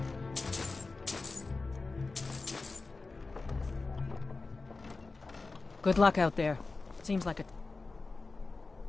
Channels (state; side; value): quieter; right; 3.8 dB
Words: Good luck out there. Seems like a...